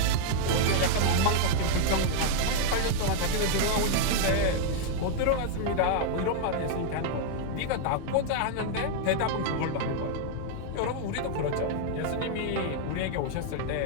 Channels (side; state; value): both; different; correlation -0.01